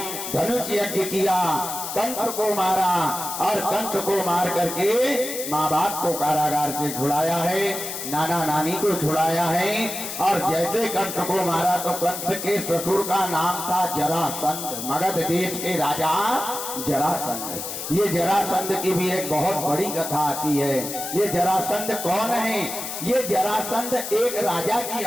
धनुष यज्ञ किया, कंस को मारा, और कंस को मार करके माँ बाप को कारागार से छुड़ाया है, नाना नानी को छुड़ाया है। और जैसे कंस को मारा तो कंस के ससुर का नाम था जरासंध, मगध देश के राजा जरासंध। ये जरासंध की भी एक बहुत बड़ी कथा आती है। ये जरासंध कौन है? ये जरासंध एक राजा की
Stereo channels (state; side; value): noise; left; hiss, 6 dB below the sound